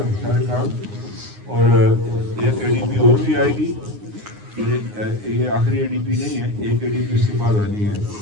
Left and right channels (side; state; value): left; late; 9.6 ms